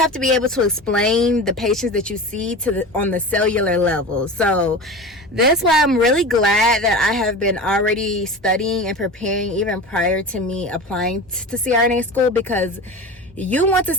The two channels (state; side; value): normal; both; correlation 0.31